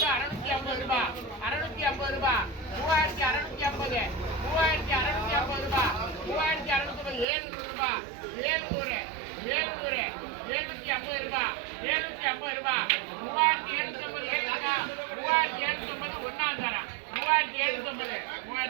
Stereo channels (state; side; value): drops out; left; at 7.2 s